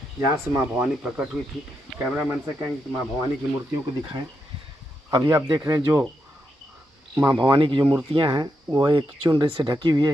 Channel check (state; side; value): normal; both; correlation 0.83